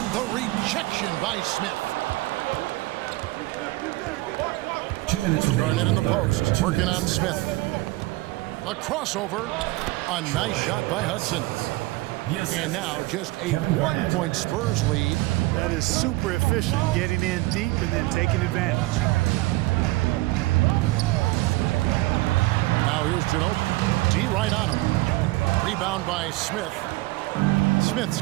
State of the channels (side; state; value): left; quieter; 20.4 dB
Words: the rejection by Smith. 2 minutes remaining. Garnett in the post, working on Smith. A crossover. A nice shot by Hudson. Yes. And now just a 1-point Spurs lead. That is super efficient, getting in deep and then taking advantage. Now here's Ginobili. D right on him. Rebound by Smith. Smith's